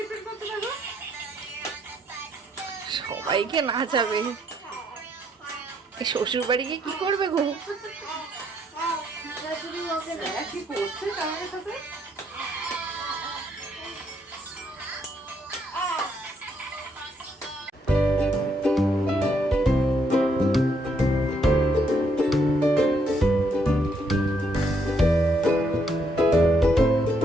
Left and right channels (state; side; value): normal; both; correlation 0.73